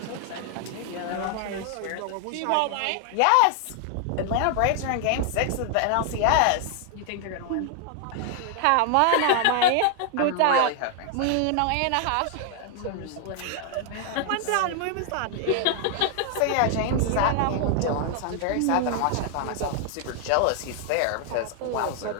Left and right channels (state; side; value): different; both; correlation 0.00